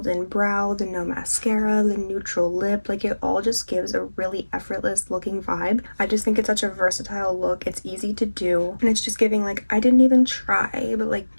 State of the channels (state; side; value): inverted; both; correlation -1.00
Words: in brow, the no mascara, the neutral lip, like it all just gives a really effortless looking vibe. I just think it's such a versatile look. It's easy to do, and it's just giving like, I didn't even try, but like